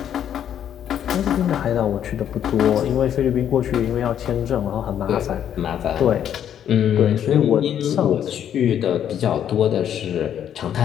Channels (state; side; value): quieter; right; 9.7 dB